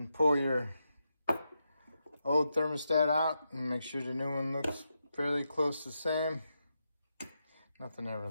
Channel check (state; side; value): inverted; both; correlation -0.86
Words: pull your old thermostat out and make sure the new one looks fairly close to the same. Nothing ever